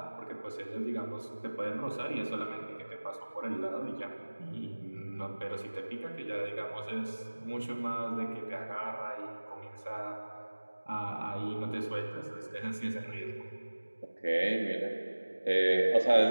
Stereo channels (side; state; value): both; inverted; correlation -1.00